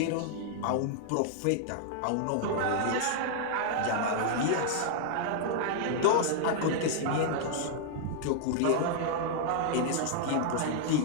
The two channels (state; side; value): different; both; correlation -0.01